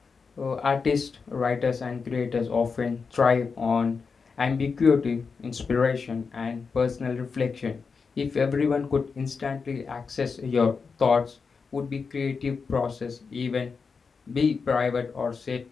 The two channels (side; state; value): right; quieter; 5.2 dB